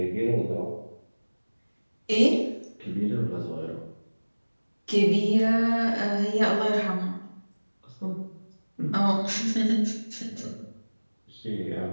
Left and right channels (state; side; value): inverted; both; correlation -1.00